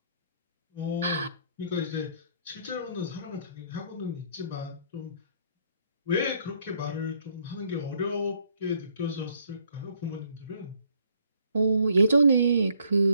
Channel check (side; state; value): both; inverted; correlation -0.66